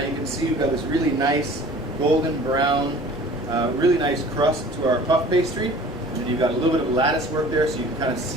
you can see we've got this really nice golden brown, really nice crust to our puff pastry, and then you've got a little bit of lattice work there, so you can kind of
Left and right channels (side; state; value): both; normal; correlation 0.46